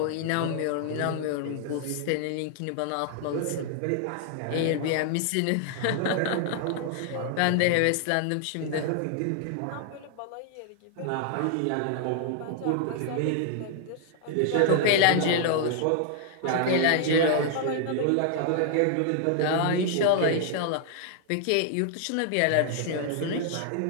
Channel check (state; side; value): different; both; correlation 0.00